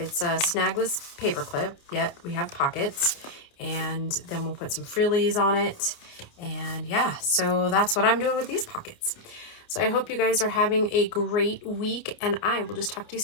a snagless paper clip, yet we have pockets, and then we'll put some frillies on it. And yeah, so that's what I'm doing with these pockets. So I hope you guys are having a great week, and I will just talk to you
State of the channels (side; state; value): right; late; 29 ms